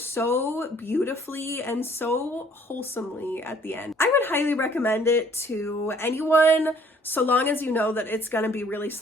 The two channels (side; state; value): both; normal; correlation 0.58